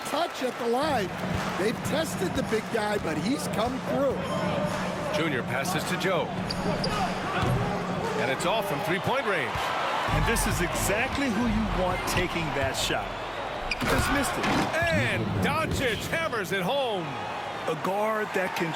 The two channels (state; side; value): identical; both; correlation 1.00